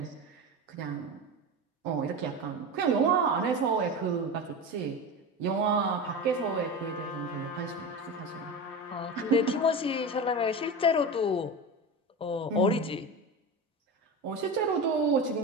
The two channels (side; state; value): both; normal; correlation 0.25